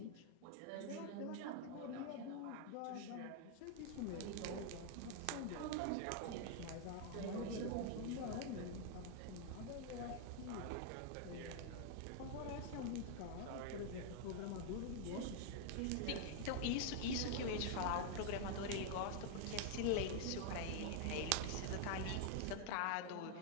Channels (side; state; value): both; different; correlation 0.00